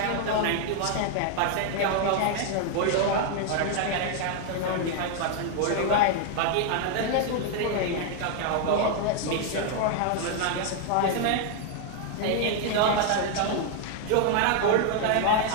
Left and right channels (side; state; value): both; different; correlation 0.00